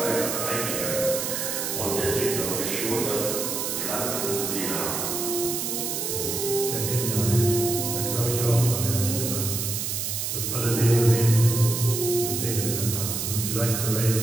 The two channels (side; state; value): right; noise; hiss, 2 dB below the sound